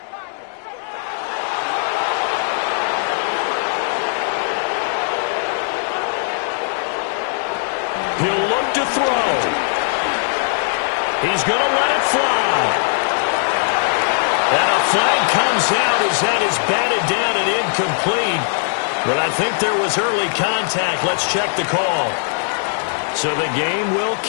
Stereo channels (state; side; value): silent; right; digital silence